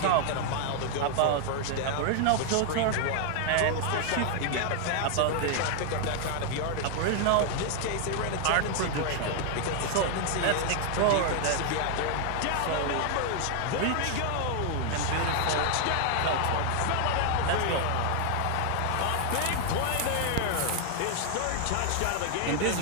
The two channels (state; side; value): different; both; correlation 0.00